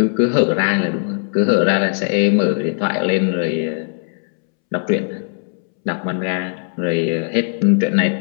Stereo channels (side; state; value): right; silent; 66 dB below the other